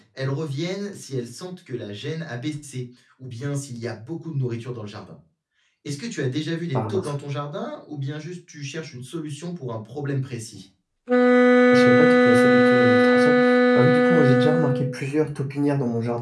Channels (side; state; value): both; identical; correlation 1.00